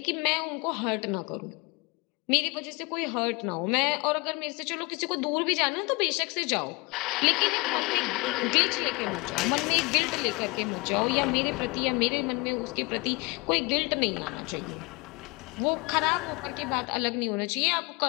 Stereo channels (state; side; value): quieter; right; 26.5 dB